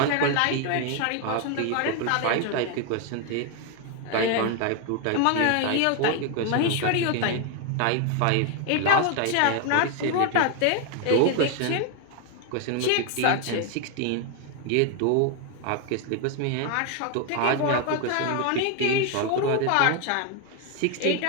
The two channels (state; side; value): different; both; correlation 0.01